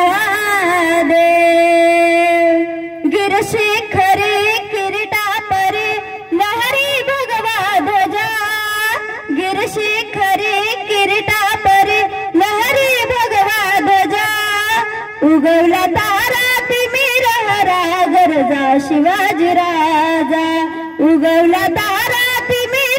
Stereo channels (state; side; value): identical; both; correlation 1.00